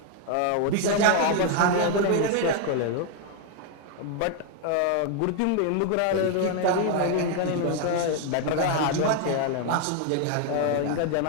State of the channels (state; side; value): different; both; correlation 0.00